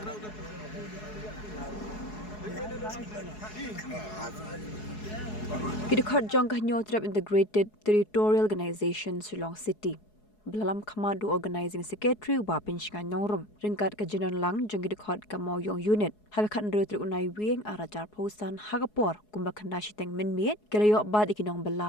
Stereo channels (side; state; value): right; late; 4.7 ms